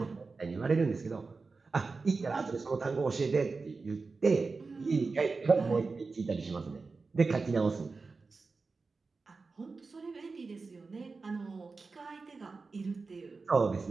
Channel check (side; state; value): left; quieter; 4.2 dB